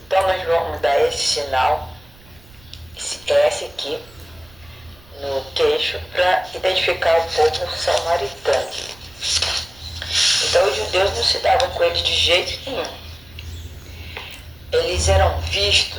nós vamos dar esse sinal, esse S aqui, no queixo, para identificar o povo samaritano. Então os judeus não se davam com eles de jeito nenhum. Eles eram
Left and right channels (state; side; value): noise; right; rumble, 25 dB below the sound